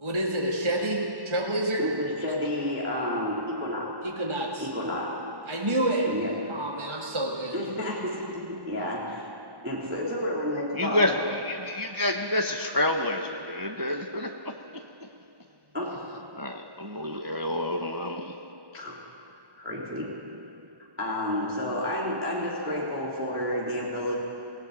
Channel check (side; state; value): left; late; 1.1 ms